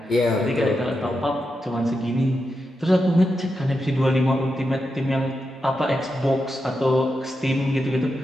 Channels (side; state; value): both; normal; correlation 0.87